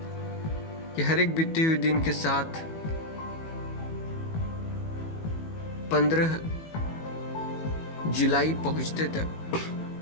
कि हर एक बीते हुए दिन के साथ 15 जुलाई पहुंचते तक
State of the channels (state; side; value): late; right; 18 ms